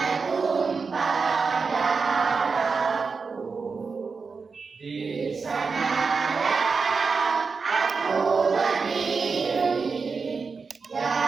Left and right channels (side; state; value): left; quieter; 4.9 dB